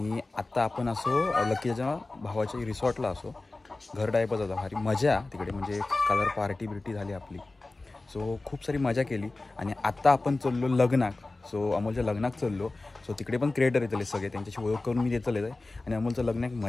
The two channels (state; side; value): quieter; right; 3.2 dB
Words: आत्ता आपण असो लक्कीच्या भावाच्या रिसॉर्टला असो, घर टाईपच होता, भारी मजा तिकडे, म्हणजे कलर पार्टी बिर्टी झाली आपली। सो खूप सारी मजा केली आणि आत्ता आपण चाललो लग्नाक। सो अमोलच्या लग्नाक चाललो। सो तिकडे पण क्रिएटर येतले सगळे, त्यांच्याशी ओळख करून मी देतले आहे आणि अमोलचं लग्नाक